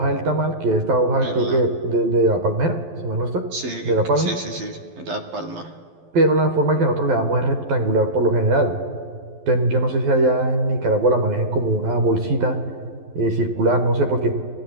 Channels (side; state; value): left; late; 12 ms